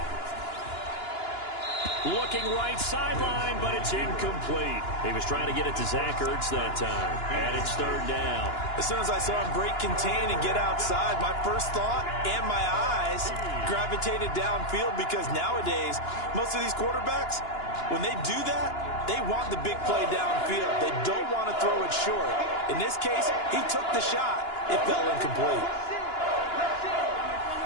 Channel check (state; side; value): late; right; 2.9 ms